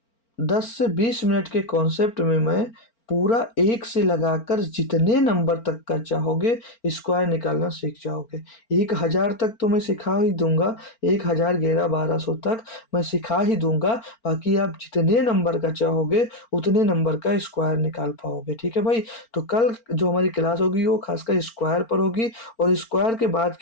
10 से 20 मिनट के कॉन्सेप्ट में मैं पूरा एक से लगाकर जितने नंबर तक का चाहोगे स्क्वायर निकालना सीख जाओगे। 1000 तक तो मैं सिखा ही दूंगा, 1000 11 1200 तक मैं सिखा ही दूंगा। बाकी आप जितने नंबर का चाहोगे उतने नंबर का स्क्वायर निकाल पाओगे, ठीक है भाई। तो कल जो हमारी क्लास होगी वो खासकर स्क्वायर पर होगी, और स्क्वायर के बाद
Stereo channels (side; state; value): right; late; 4.4 ms